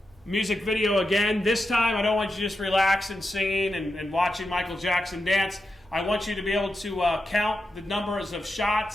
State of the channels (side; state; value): both; normal; correlation 0.88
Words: music video again. This time, I don't want you just relaxing, singing, and watching Michael Jackson dance. I want you to be able to count the numbers of